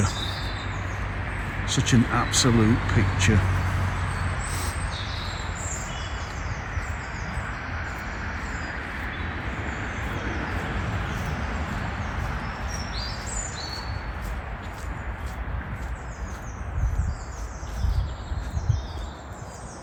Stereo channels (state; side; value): identical; both; correlation 1.00